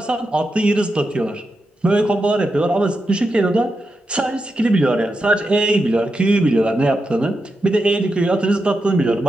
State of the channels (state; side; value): normal; both; correlation 0.87